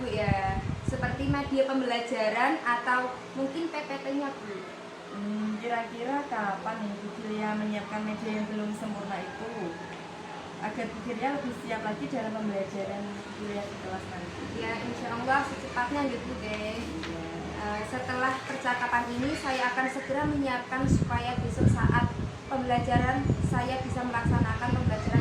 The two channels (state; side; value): identical; both; correlation 1.00